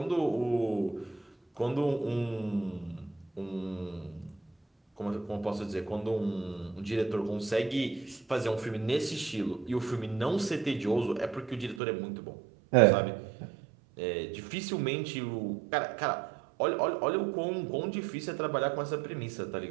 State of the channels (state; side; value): drops out; left; at 11.8 s